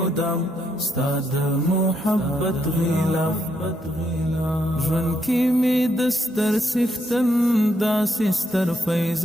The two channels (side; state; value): both; normal; correlation 0.78